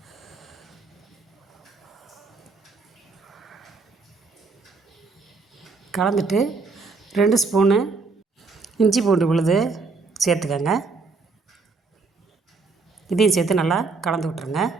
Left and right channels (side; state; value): left; quieter; 4.2 dB